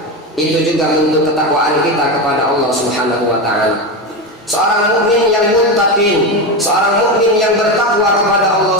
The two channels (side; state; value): both; normal; correlation 0.16